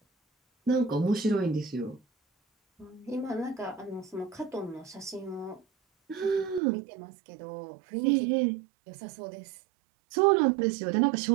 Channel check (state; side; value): drops out; left; at 6.6 s